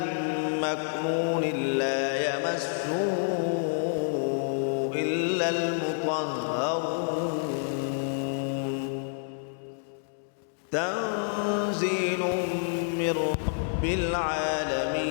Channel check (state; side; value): silent; right; digital silence